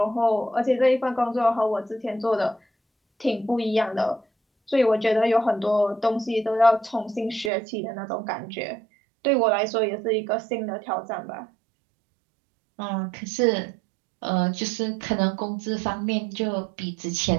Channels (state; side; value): drops out; left; at 7.5 s